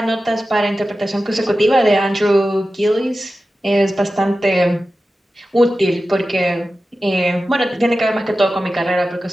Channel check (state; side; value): normal; both; correlation 0.94